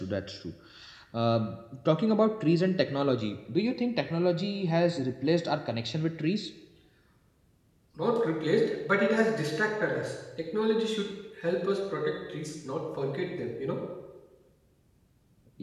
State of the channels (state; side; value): identical; both; correlation 1.00